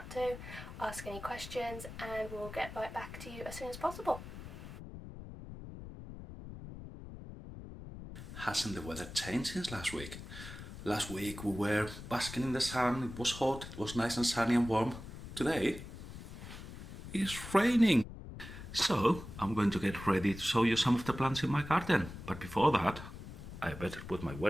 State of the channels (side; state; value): left; noise; rumble, 12 dB below the sound